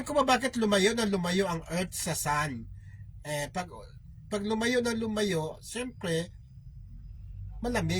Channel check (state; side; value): identical; both; correlation 1.00